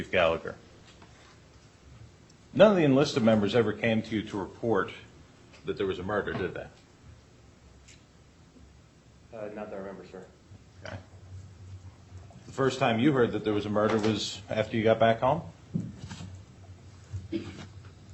Gallagher. None of the enlisted members ever came to you to report that there was a murder, did they? Not that I remember, sir. Okay. The first time you heard that there was a murder was after you got back home? Well,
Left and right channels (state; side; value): identical; both; correlation 1.00